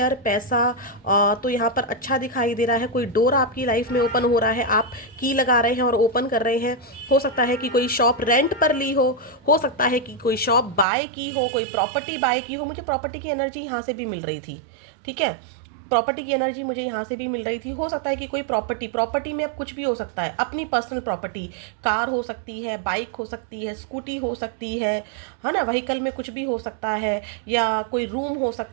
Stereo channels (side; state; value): left; drops out; at 10.9 s